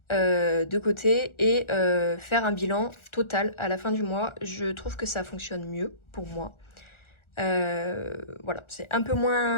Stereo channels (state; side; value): late; right; 1.4 ms